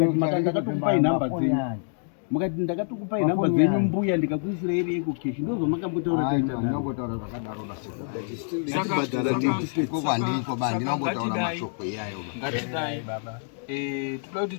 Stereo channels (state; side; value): silent; right; 61 dB below the other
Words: ndakatokupai nhamba dzenyu. Mukati ndakatokupai nhamba dzenyu mbuya ndikakuisira ire Eco Cash. Ndozvo makambotaura taita naro. Ndinongotaura zvakadaro basi. Saka bandiko bandi ndinongotaura mashoko iyayo. ngatidai baba toda kuti